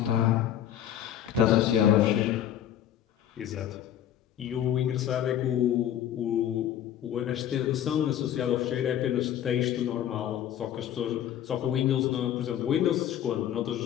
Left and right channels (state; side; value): quieter; right; 10.7 dB